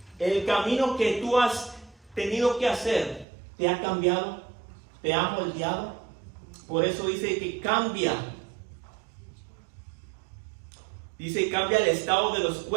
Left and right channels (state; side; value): drops out; left; at 3.2 s